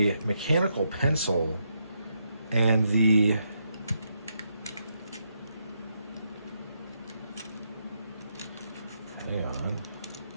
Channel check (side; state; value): both; inverted; correlation -0.80